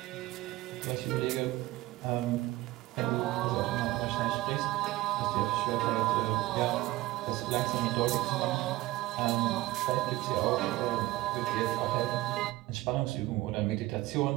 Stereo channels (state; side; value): quieter; left; 17.9 dB